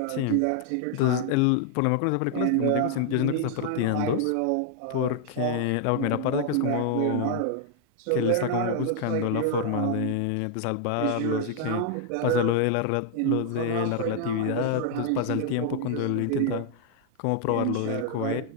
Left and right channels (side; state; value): both; different; correlation 0.00